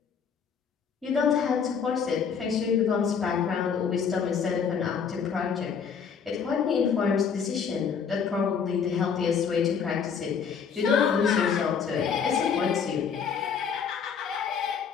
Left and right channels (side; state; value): right; quieter; 6.7 dB